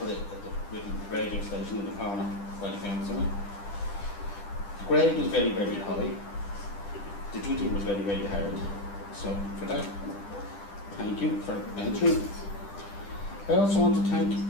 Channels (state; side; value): late; right; 10 ms